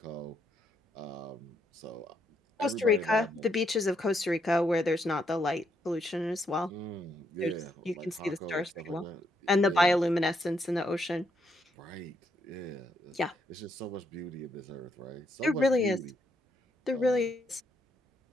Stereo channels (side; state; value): both; normal; correlation 0.76